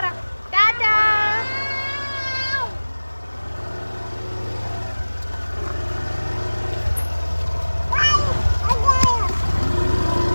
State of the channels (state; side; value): inverted; both; correlation -1.00